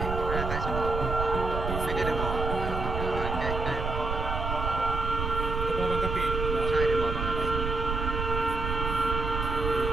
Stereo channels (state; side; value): noise; right; rumble, 3 dB below the sound